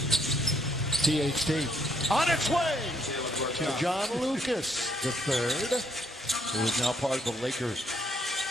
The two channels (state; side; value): normal; both; correlation 0.71